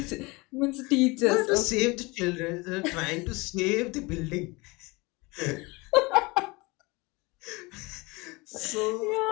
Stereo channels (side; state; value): right; quieter; 24.8 dB